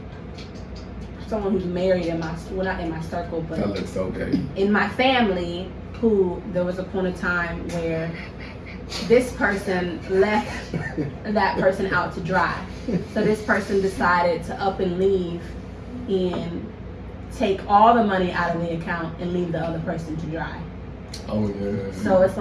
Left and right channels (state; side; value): identical; both; correlation 1.00